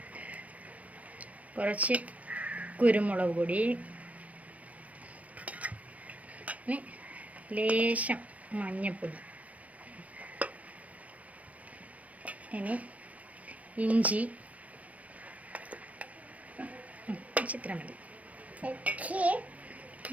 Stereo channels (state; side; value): late; left; 0.067 ms